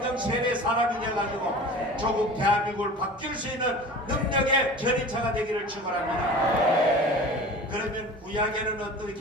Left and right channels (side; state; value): both; normal; correlation 0.38